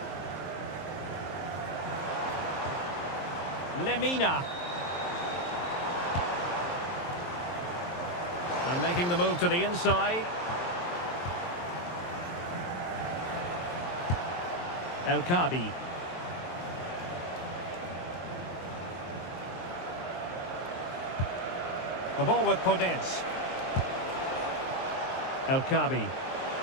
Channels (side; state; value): right; late; 23 ms